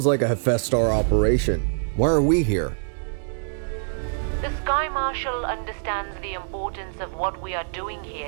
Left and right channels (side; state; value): left; silent; digital silence